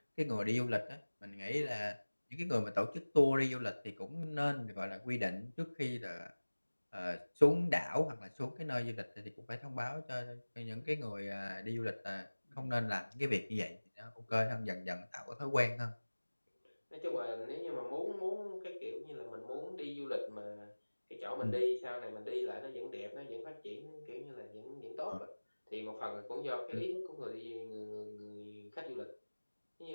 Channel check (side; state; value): both; inverted; correlation -1.00